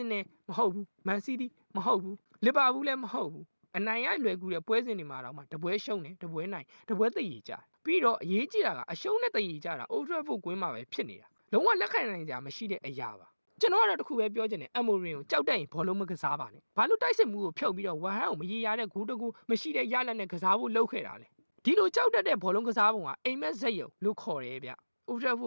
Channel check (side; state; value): both; inverted; correlation -1.00